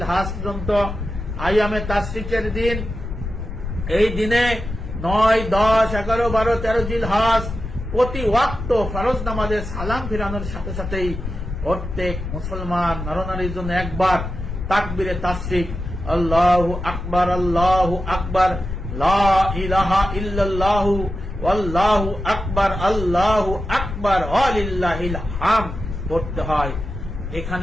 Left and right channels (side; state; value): left; noise; rumble, 7 dB below the sound